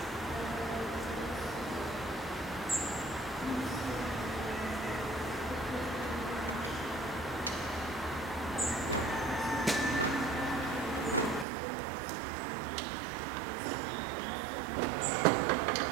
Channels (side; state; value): left; drops out; at 11.5 s